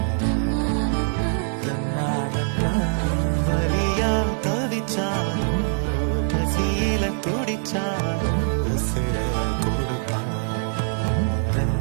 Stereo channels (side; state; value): left; silent; 63 dB below the other